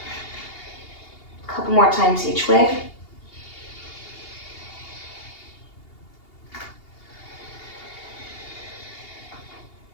A couple more times each way.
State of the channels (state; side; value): late; right; 2.8 ms